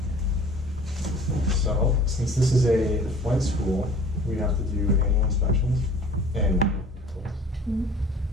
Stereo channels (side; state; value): both; normal; correlation 0.48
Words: So, since this is a flight school, we have to do annual inspections. And Mhm.